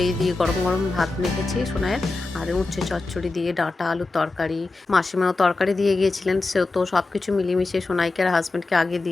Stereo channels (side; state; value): right; quieter; 3.4 dB